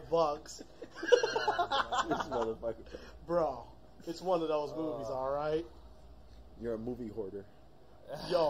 This motherfucker. Bro, it's one of those movies, alright? You're a movie hoarder.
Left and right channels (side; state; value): both; identical; correlation 1.00